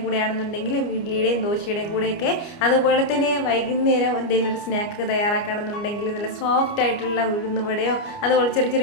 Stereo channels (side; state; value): right; late; 29 ms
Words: കൂടെയാണെന്നുണ്ടെങ്കിൽ ഇഡ്ലിയുടെയും ദോശയുടെയും കൂടെയൊക്കെ, അതുപോലെ തന്നെ വൈകുന്നേരം എന്തെങ്കിലും ഒരു സ്നാക്ക് തയ്യാറാക്കുകയാണെന്നുണ്ടെങ്കിൽ നല്ല സോഫ്റ്റ് ആയിട്ടുള്ള ഉഴുന്നുവടയോ അതുപോലെ ചെറിയ